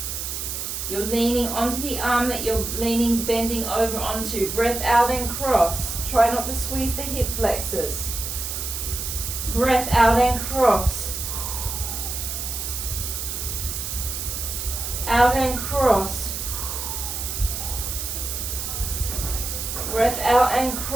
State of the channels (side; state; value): right; noise; hiss, 4 dB below the sound